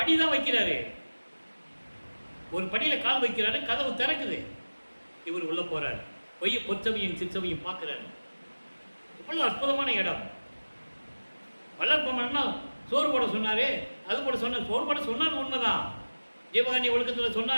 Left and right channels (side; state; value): both; inverted; correlation -1.00